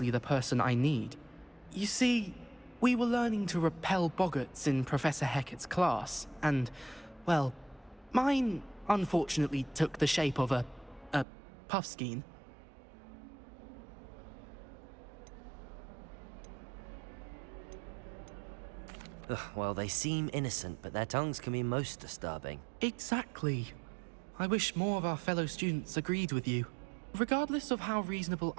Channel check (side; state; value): left; drops out; at 11.2 s